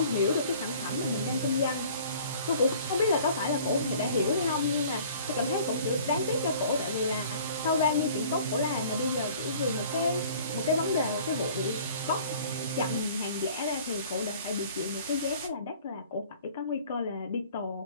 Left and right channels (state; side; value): inverted; both; correlation -0.50